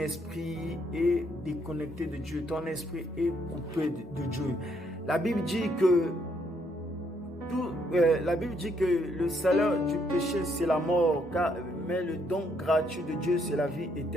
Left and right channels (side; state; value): both; normal; correlation 0.72